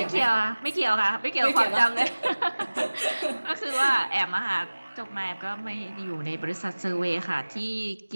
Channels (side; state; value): both; inverted; correlation -1.00